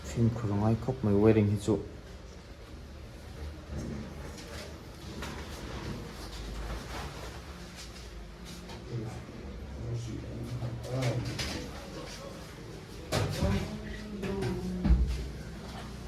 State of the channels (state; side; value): identical; both; correlation 1.00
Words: phim khung ai khóc mấy wedding hi chu